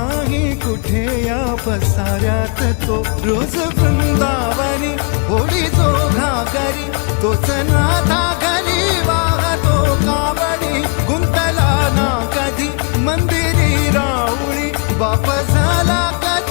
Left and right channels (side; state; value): right; quieter; 37.0 dB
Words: कुठे या पसाऱ्यात तो रोज वृंदावनी होळी जो घागरी तोच नाथा घरी वाहतो कावडी गुंतला ना कधी मंदिरी राऊळी बाप